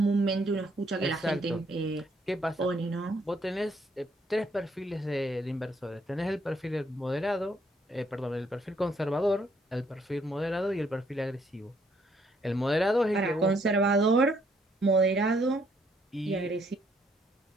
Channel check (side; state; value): both; normal; correlation 0.69